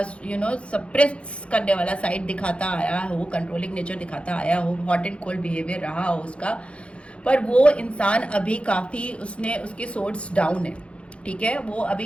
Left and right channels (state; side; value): late; right; 0.060 ms